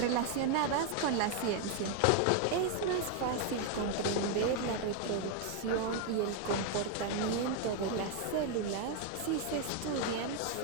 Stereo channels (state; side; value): different; both; correlation 0.01